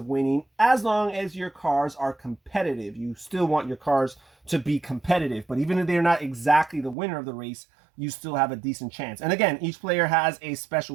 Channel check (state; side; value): drops out; left; at 7.0 s